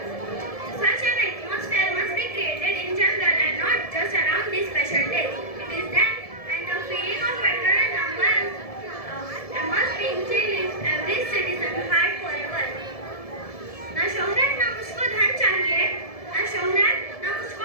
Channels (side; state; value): right; late; 1.7 ms